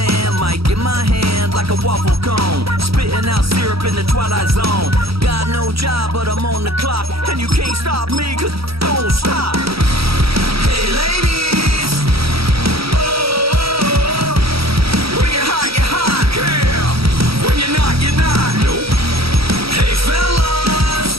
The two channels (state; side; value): late; left; 0.76 ms